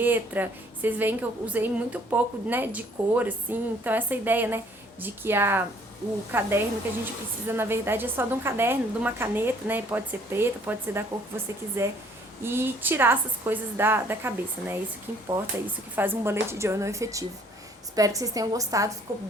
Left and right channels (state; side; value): normal; both; correlation 0.60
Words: Vocês veem que eu usei muito pouco, né, de cor, assim, então essa ideia, né, de que o caderno que a gente precisa, na verdade, é só de um caderno, de uma caneta, né? Pode ser preta, pode ser da cor que você quiser. E tirar essas coisas da cabeça, né? Isso que importa, isso que faz um bullet journal efetivo. Espero que vocês tenham gostado, ficou